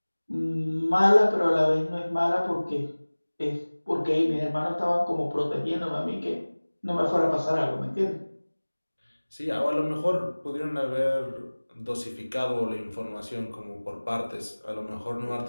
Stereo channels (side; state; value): both; inverted; correlation -1.00